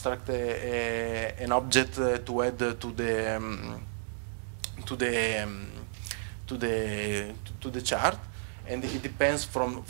an object to add to the chart, and it depends from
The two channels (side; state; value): left; silent; digital silence